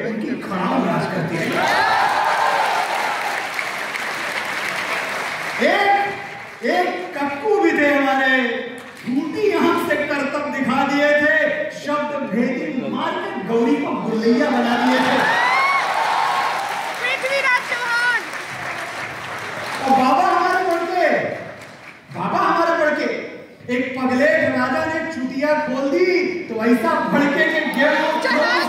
उनकी खड़ाम राज करती रही। एक कक्कू भी थे हमारे, झूठी आंख से करतब दिखा दिए थे, शब्द भेदी मार के गौरी को गुल्लैया बना दिए थे। पृथ्वीराज चौहान। और बाबा हमारे बढ़के एक पगलेट राजा ने चुटिया खोल दी तो ऐसा भड़के के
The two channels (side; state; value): both; identical; correlation 1.00